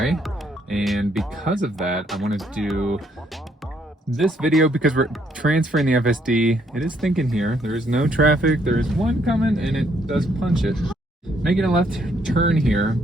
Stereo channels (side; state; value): both; normal; correlation 0.70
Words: and because of that, I wanted to do this video because we're transferring the FSD. It is thinking here. There is no traffic. There is one coming, and it does punch it. Making a left turn here,